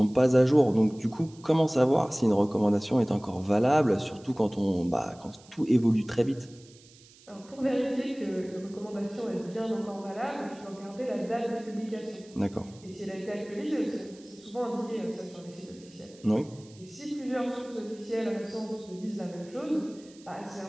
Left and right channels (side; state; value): right; noise; hiss, 25 dB below the sound